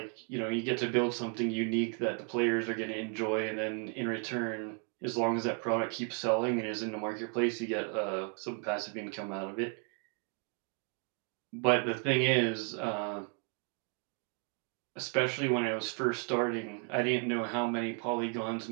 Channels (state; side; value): quieter; left; 39.8 dB